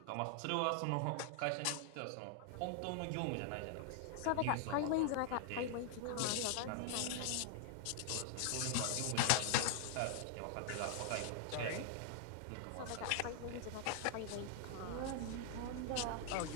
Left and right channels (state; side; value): different; both; correlation -0.01